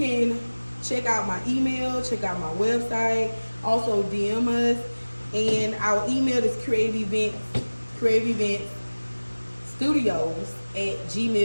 check out my email, check out my website, also DM us. And our email is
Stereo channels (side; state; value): both; inverted; correlation -1.00